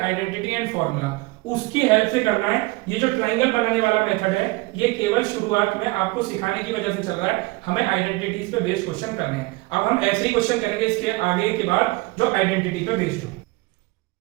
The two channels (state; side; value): quieter; left; 23.1 dB